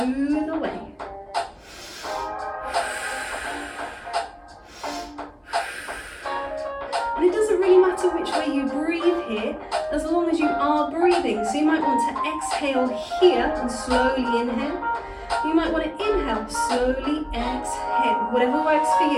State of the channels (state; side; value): identical; both; correlation 1.00